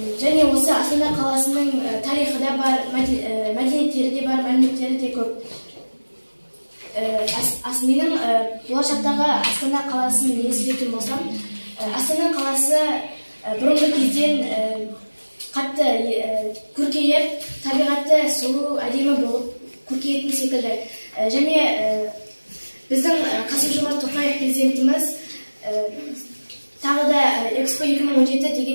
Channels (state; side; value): inverted; both; correlation -1.00